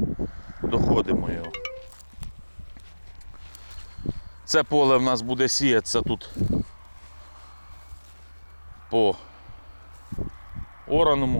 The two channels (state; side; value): inverted; both; correlation -1.00